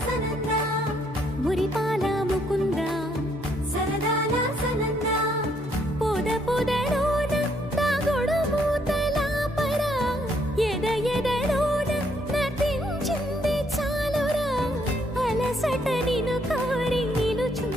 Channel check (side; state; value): both; normal; correlation 0.70